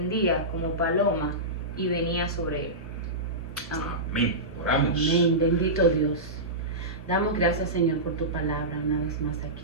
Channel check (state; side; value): noise; right; hum, 9 dB below the sound